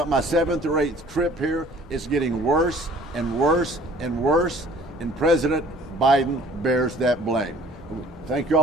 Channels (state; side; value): normal; both; correlation 0.53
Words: my 7th or 8th trip here. It's getting worse and worse and worse, and President Biden bears that blame. Thank you